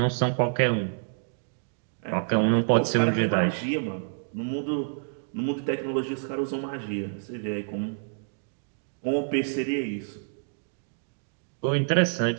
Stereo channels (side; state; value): left; silent; digital silence